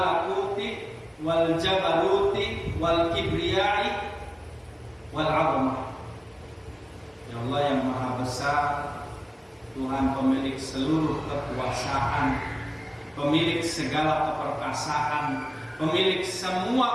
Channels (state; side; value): identical; both; correlation 1.00